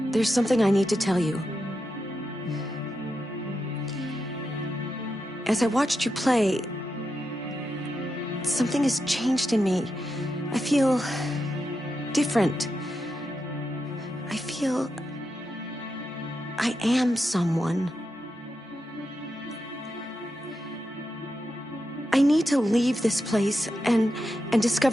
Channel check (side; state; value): both; normal; correlation 0.87